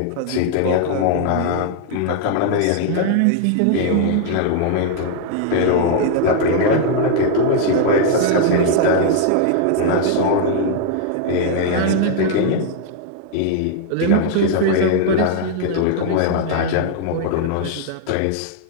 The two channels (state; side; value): different; both; correlation 0.00